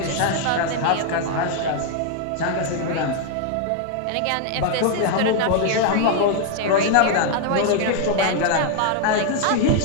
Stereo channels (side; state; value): both; different; correlation 0.00